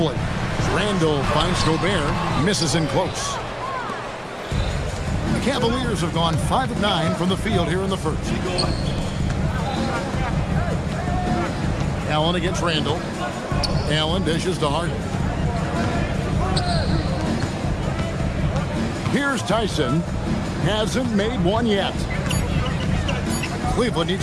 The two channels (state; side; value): identical; both; correlation 1.00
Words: Randall finds Gobert. Misses in close. The Cavaliers have gone 5 of 9 from the field here in the first. Allen against Randall. Allen dishes to Harden. Here's Tyson. Hasn't made one yet. Cleveland